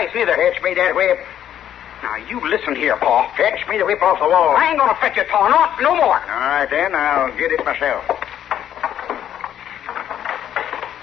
neither. Fetch me that whip. Now, you listen here, Pa. Fetch me the whip off the wall. I ain't going to fetch it, Pa. No more. All right, then. I'll get it myself.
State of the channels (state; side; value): quieter; right; 10.5 dB